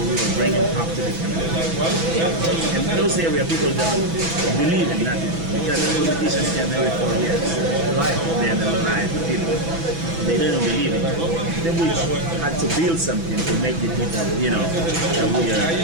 bring it up to the community. And in those areas, people don't believe in nothing because the politicians can every 4 years. They're alive people. They don't believe in it. Then we had to build something to make the people, that we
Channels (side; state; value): left; late; 6.0 ms